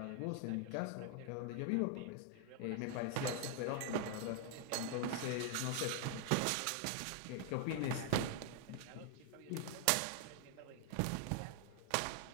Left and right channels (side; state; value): both; different; correlation 0.00